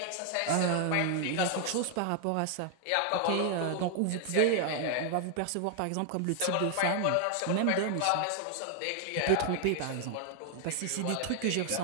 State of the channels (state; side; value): different; both; correlation 0.00